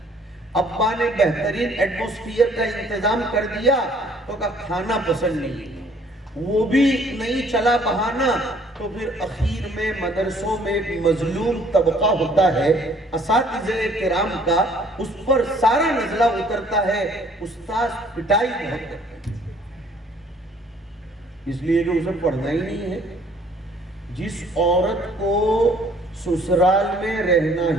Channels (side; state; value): both; normal; correlation 0.59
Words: ابا نے بہترین ایٹموسفیئر کا انتظام کر دیا تو کھانا پسند نہیں، وہ بھی نہیں چلا بہانہ، تو پھر اخیر میں مدرسوں میں ایک مظلوم طبقہ ہوتا ہے اساتذہ کرام کا، اس پر سارا نزلہ اترتا ہے، استاذ پٹائی بہت کرتے ہیں، اس لیے کہ اسے پڑھنا ہی نہیں ہے۔ جس عورت کو سسرال میں رہنا